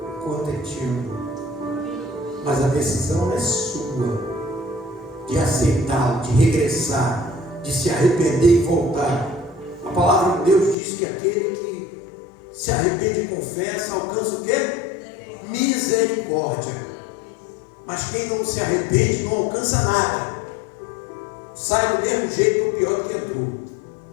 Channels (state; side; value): drops out; right; at 10.8 s